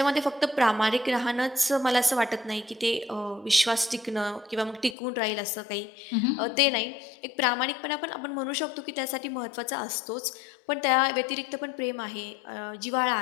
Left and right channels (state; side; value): drops out; right; at 5.0 s